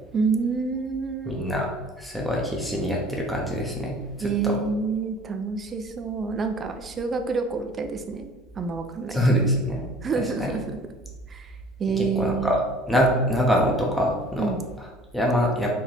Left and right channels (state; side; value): normal; both; correlation 0.50